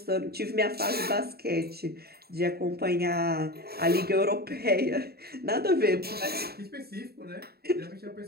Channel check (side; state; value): left; late; 0.46 ms